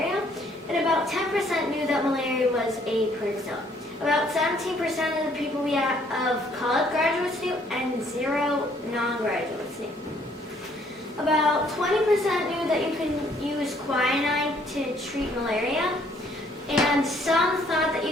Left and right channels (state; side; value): normal; both; correlation 0.64